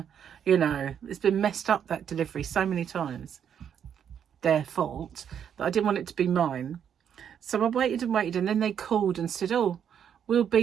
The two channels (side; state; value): left; quieter; 8.5 dB